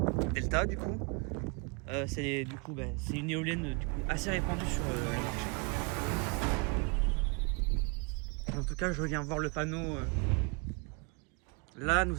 Delta du coup. C'est une éolienne du coup, assez répandue sur le marché. En tout cas, je viens voir le panneau. Là,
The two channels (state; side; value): quieter; left; 32.6 dB